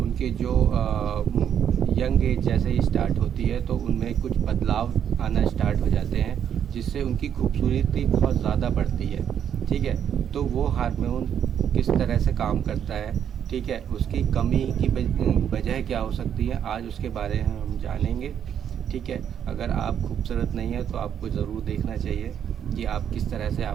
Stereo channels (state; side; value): quieter; left; 8.9 dB